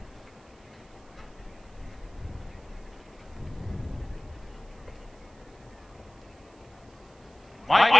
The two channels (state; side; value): noise; right; hiss, 30 dB below the sound